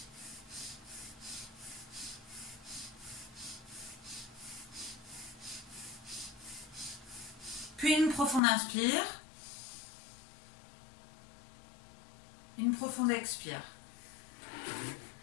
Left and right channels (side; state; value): right; drops out; at 8.4 s